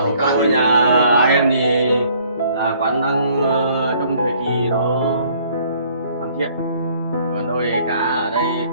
Câu nhà em thì là quán đang trong thời kỳ nó hoàn thiện. Còn đôi cá ở đây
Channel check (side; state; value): both; inverted; correlation -0.60